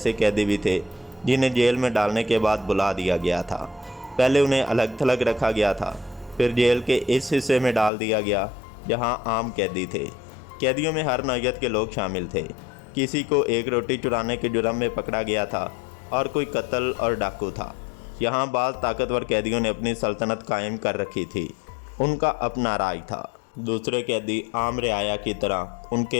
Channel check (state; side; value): drops out; right; at 7.9 s